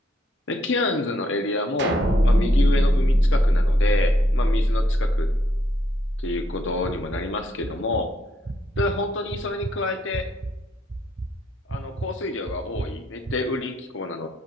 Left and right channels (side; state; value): both; normal; correlation 0.74